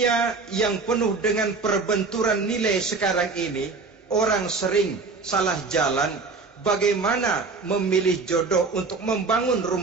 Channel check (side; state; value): left; quieter; 4.2 dB